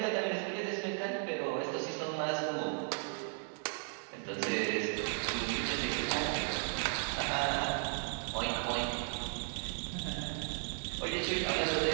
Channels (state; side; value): silent; left; 54 dB below the other